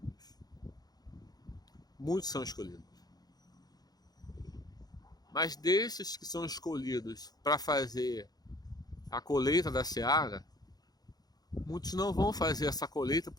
Muitos são escolhidos. Mas desses que são escolhidos para fazer a colheita da seara, muitos não vão fazer essa colheita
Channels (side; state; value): right; late; 0.19 ms